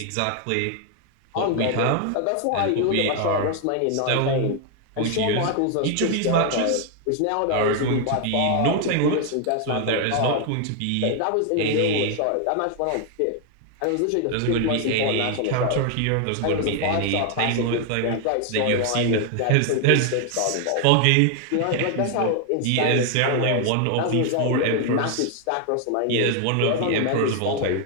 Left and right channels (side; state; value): both; different; correlation 0.00